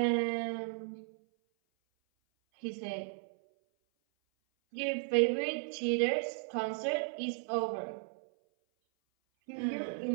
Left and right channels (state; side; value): silent; left; 54 dB below the other